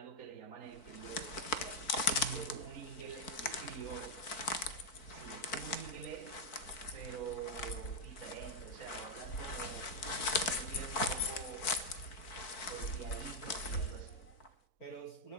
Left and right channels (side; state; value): right; late; 4.5 ms